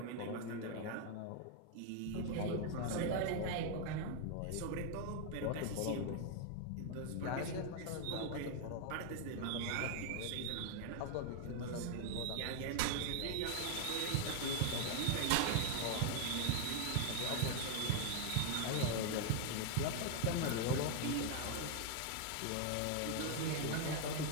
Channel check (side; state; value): both; different; correlation 0.00